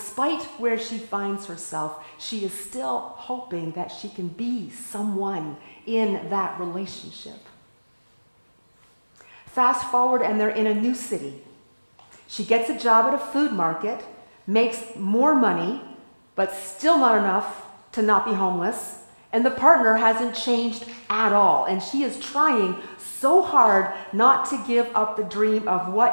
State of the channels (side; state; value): both; inverted; correlation -1.00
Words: where she finds herself, she is still hoping that she can be someone in that relationship. Fast forward, and they're in a new city. She gets a job at a food market, makes more money, but still not enough to not be homeless. And the partner hasn't changed at all. And she is trying so hard not to give up the dream of